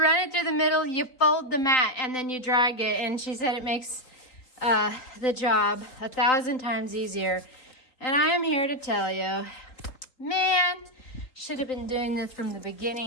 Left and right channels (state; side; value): late; right; 3.9 ms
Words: it through the middle, you fold the mat, and then you drag it. And she said it makes the job 1,000 times easier. And I am here to tell you, man, should have been doing this from the